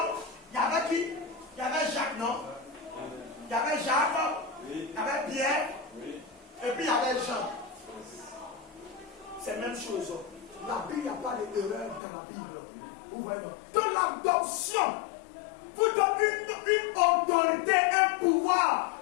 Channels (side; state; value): right; drops out; at 12.0 s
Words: il y avait qui? Il y avait Jacques, non? Il y avait Jacques, oui. Il y avait Pierre, oui. Et puis il y avait Jean. C'est la même chose. La Bible, il n'y a pas d'erreur dans la Bible. Vous voyez? Donc l'adoption vous donne une autorité, un pouvoir